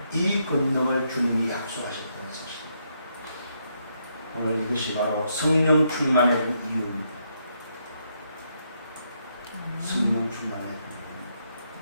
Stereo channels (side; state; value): both; inverted; correlation -0.77